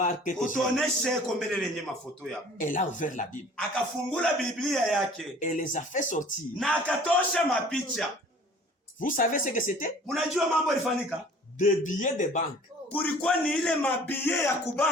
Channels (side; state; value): both; normal; correlation 0.49